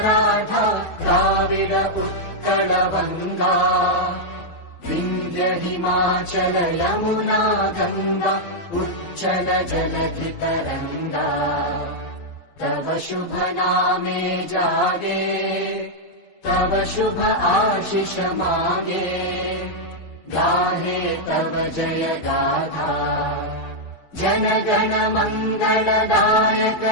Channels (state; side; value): late; right; 12 ms